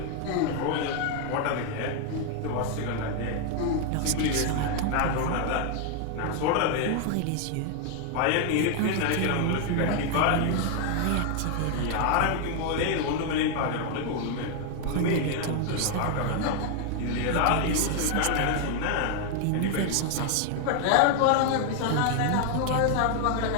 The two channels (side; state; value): both; different; correlation 0.00